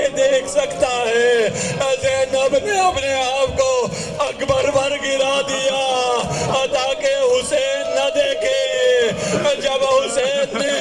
دیکھ سکتا ہے؟ زینب نے اپنے آپ کو اکبر پر گرا دیا تاکہ حسین نہ دیکھے۔ جب حسین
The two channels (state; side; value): identical; both; correlation 1.00